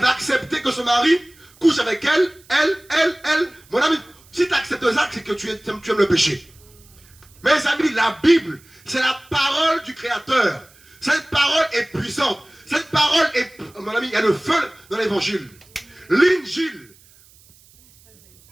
va accepter que son mari couche avec elle. Mon ami, si tu acceptes ça, c'est que tu aimes le péché. Mes amis, la Bible, c'est la parole du Créateur. Cette parole est puissante. Cette parole est... Mon ami, il y a le feu dans l'évangile. L'injil,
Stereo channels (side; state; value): right; noise; hiss, 28 dB below the sound